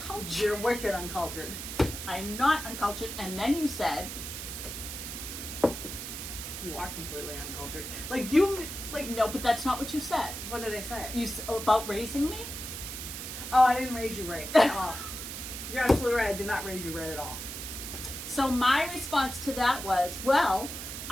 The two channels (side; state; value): right; noise; hiss, 7 dB below the sound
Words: You're wicked uncultured. I'm not uncultured. And then you said, You are completely uncultured. Like, you, like, no, but that's not what you said. what did I say? About raising me? Oh, I didn't raise you right at all. You're absolutely right. I did not raise you right at all. So my response to that was, well,